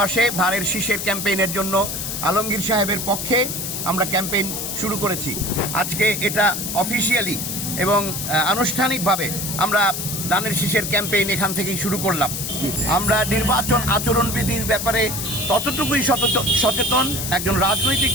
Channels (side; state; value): left; noise; hiss, 4 dB below the sound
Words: ধানের শীষের ক্যাম্পেইনের জন্য আলমগীর সাহেবের পক্ষে আমরা ক্যাম্পেইন শুরু করেছি। আজকে এটা অফিসিয়ালি এবং আনুষ্ঠানিকভাবে আমরা ধানের শীষের ক্যাম্পেইন এখান থেকেই শুরু করলাম। আমরা নির্বাচন আচরণবিধির ব্যাপারে ততটুকুই সচেতন একজন রাজনৈতিক